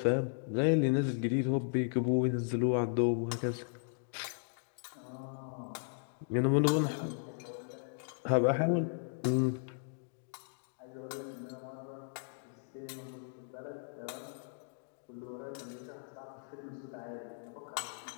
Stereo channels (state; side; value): silent; right; digital silence